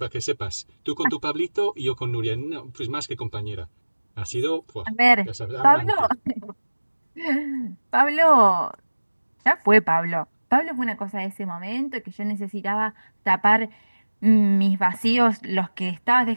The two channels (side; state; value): both; inverted; correlation -1.00